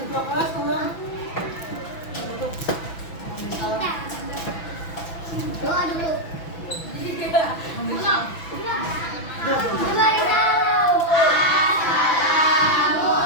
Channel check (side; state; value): right; late; 6.0 ms